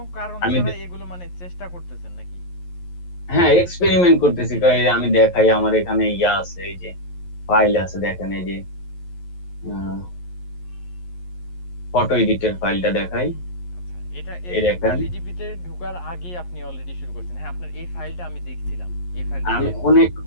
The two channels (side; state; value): right; late; 11 ms